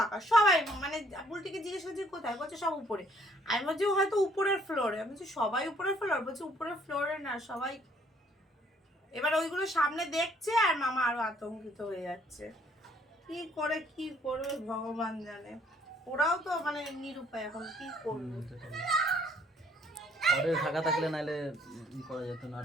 সবাই মানে বুলটিকে জিজ্ঞেস করছি কোথায়, বলছে সব উপরে। আমি বলছি হয়তো উপরের ফ্লোরে, আমি বলছি সবাই উপরের ফ্লোর, বলছে উপরের ফ্লোরে না সবাই। এবার ওইগুলো সামনে দেখছে আর মামা আরো আতঙ্কিত হয়ে যাচ্ছে। কি করবে ভগবান জানে। ওরাও তো মানে নিরুপায়, এখন কি করবে? ঘরে থাকা থাকলে নাহলে ই করা যেত,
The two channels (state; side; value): normal; both; correlation 0.63